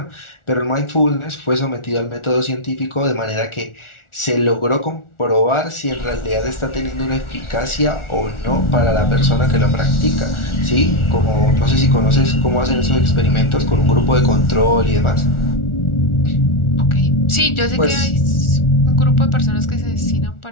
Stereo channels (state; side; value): late; right; 1.4 ms